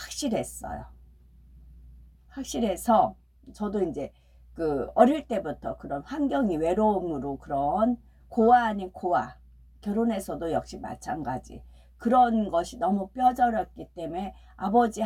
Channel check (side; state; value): both; identical; correlation 1.00